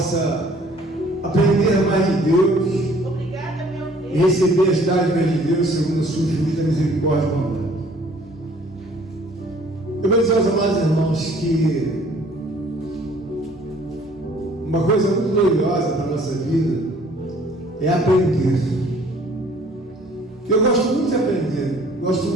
aprender mais de Deus e receber as dádivas de Deus segundo a sua infinita misericórdia e bondade. Eu vou dizer aos amados irmãos que uma coisa muito gloriosa para a nossa vida é aprender. Eu gosto muito de aprender, gosto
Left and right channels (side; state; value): both; normal; correlation 0.56